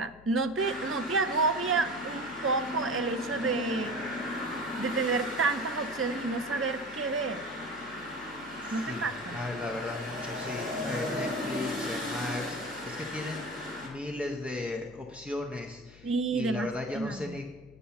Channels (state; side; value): noise; left; hum, 22 dB below the sound